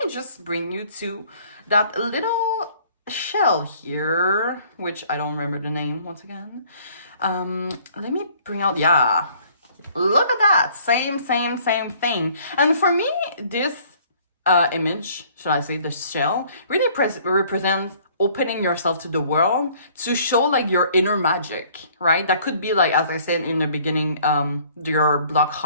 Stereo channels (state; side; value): inverted; both; correlation -0.57